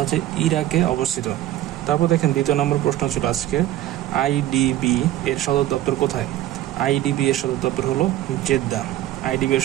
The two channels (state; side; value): quieter; left; 13.9 dB